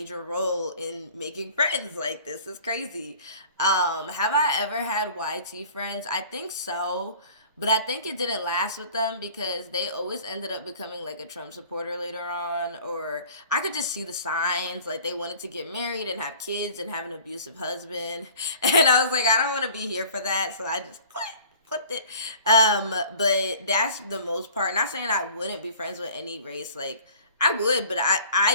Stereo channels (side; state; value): both; inverted; correlation -0.48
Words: role in making friends. Like this is crazy. Have I ever had YT friends? I think so, but I think it didn't last with them because they always ended up becoming like a Trump supporter later on, or I could just see the signs, like they wanted to get married and have kids and have an abusive husband, and I was like, I don't want to be here for that, so I just put it. But that's the most part. Not saying I wouldn't be friends with any race. Like I would, but I